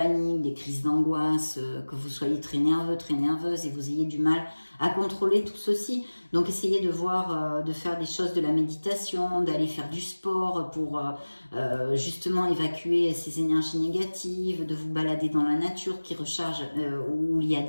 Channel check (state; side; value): inverted; both; correlation -1.00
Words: des crises d'angoisse, que vous soyez très nerveux, très nerveuse et vous ayez du mal à contrôler tout ceci. Donc essayez de voir, de faire des choses de la méditation, d'aller faire du sport pour justement évacuer ces énergies négatives, de vous balader dans la nature qui recharge, où il y a